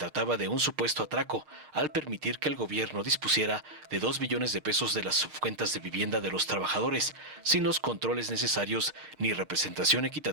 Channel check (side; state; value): left; late; 6.5 ms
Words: de un supuesto atraco al permitir que el gobierno dispusiera de 2 billones de pesos de las subcuentas de vivienda de los trabajadores, sin los controles necesarios ni representación